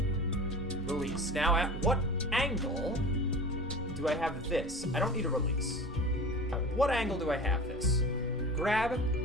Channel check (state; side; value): normal; both; correlation 0.36